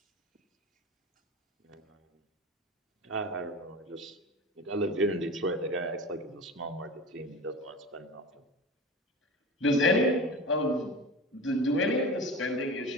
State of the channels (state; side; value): normal; both; correlation 0.31